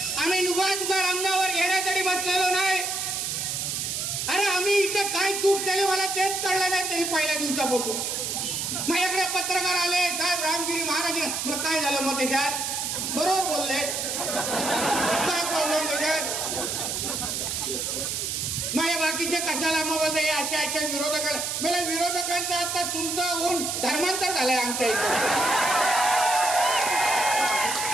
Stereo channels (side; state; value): right; noise; hiss, 2 dB below the sound